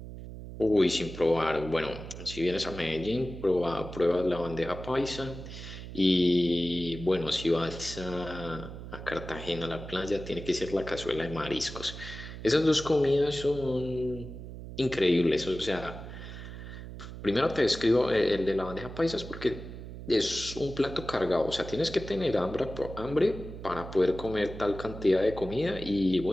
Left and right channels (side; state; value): right; noise; hum, 11 dB below the sound